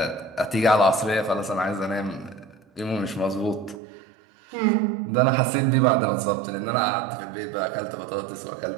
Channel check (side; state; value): left; drops out; at 3.8 s